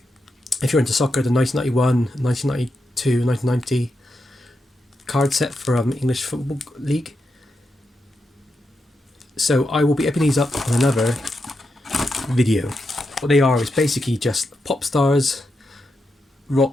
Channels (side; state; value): both; normal; correlation 0.86